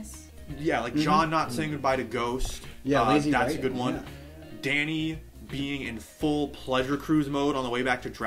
Yeah, like John not saying goodbye to Ghost. Yeah, lazy that's writing, a good one. Yeah. Danny being in full pleasure cruise mode on the way back to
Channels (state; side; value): identical; both; correlation 1.00